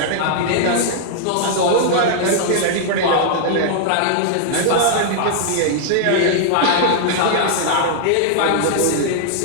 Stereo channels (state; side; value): different; both; correlation -0.01